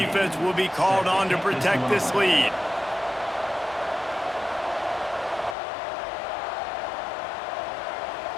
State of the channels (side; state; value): right; drops out; at 5.6 s